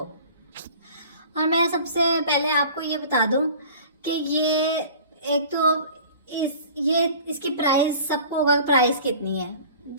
और मैं सबसे पहले आपको ये बता दूं कि ये एक तो इसकी प्राइस सबको होगा, प्राइस कितनी है।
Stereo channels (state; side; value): inverted; both; correlation -0.44